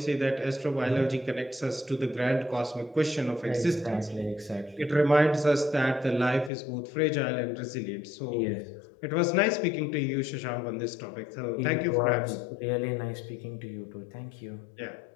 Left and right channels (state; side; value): drops out; right; at 6.5 s